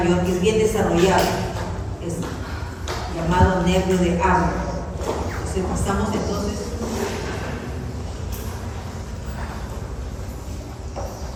que es bien desarrollado, es llamado nervio de Arnold. Entonces pasamos entonces.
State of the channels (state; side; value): identical; both; correlation 1.00